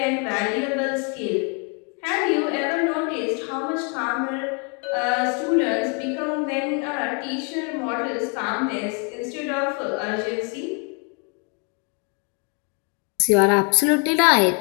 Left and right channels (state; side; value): quieter; right; 36.3 dB